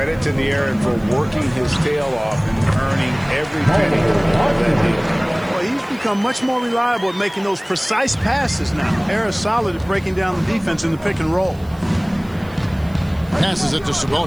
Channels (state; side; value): noise; right; hiss, 27 dB below the sound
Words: to De'Aaron for working his tail off and earning every penny of that deal. Well, he's become much more reliable at making those precise passes now. Harris solid at breaking down the defense in the pick and roll. Passes it to